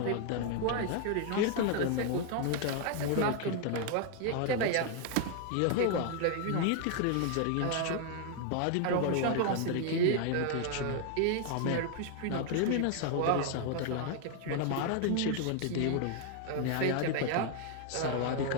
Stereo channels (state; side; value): different; both; correlation 0.00